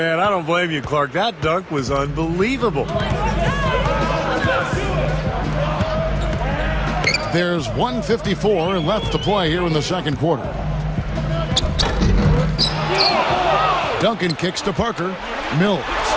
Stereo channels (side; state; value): both; identical; correlation 1.00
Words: I don't blame you, Clark. That dunk was unbelievable. There's 1:54 left to play here in the second quarter. Duncan kicks to Parker. Mills.